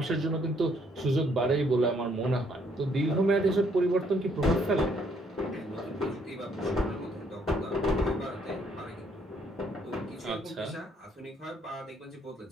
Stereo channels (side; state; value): both; normal; correlation 0.68